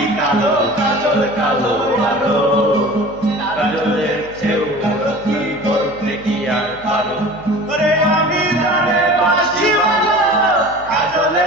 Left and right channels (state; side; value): noise; right; hum, 21 dB below the sound